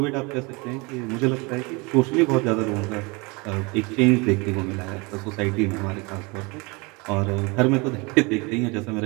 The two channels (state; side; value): quieter; left; 27.5 dB